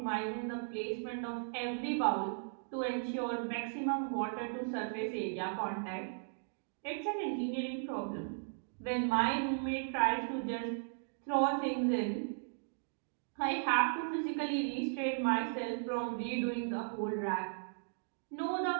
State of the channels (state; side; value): silent; left; digital silence